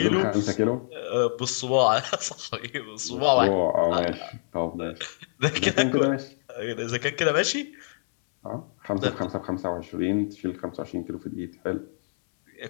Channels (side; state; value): right; silent; 61 dB below the other